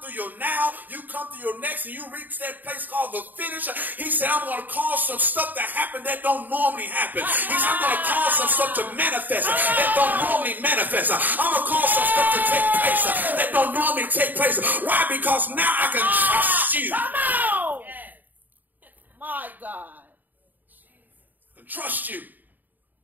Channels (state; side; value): late; left; 0.086 ms